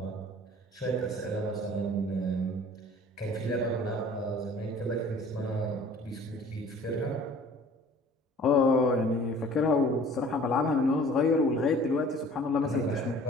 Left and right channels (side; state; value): both; normal; correlation 0.49